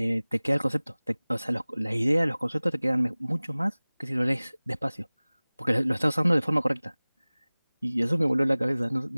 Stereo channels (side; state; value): both; inverted; correlation -1.00